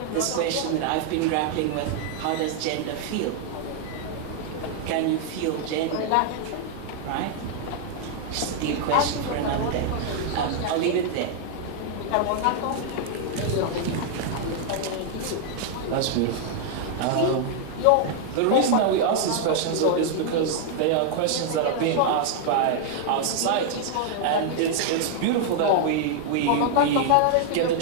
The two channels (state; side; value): different; both; correlation 0.00